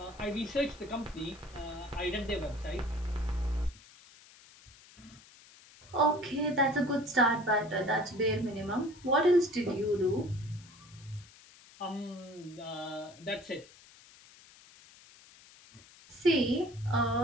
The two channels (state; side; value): noise; left; hiss, 23 dB below the sound